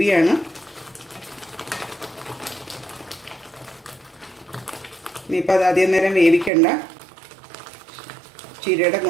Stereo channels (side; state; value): left; drops out; at 6.5 s